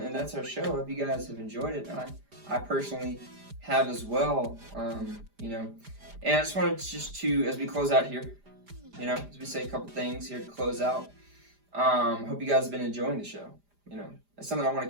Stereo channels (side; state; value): left; late; 4.9 ms